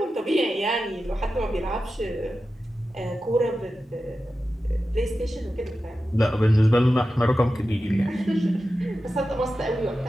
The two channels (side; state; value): both; normal; correlation 0.92